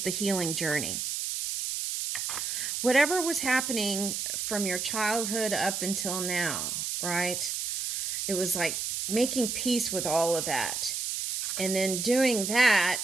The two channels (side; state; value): right; noise; hiss, 2 dB below the sound